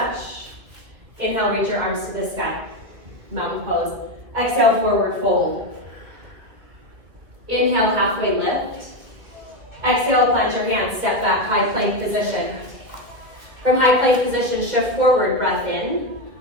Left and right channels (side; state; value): left; late; 2.2 ms